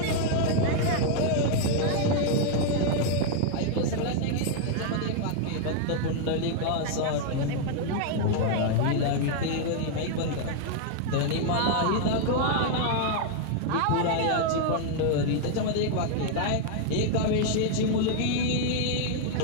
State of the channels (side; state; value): both; different; correlation 0.00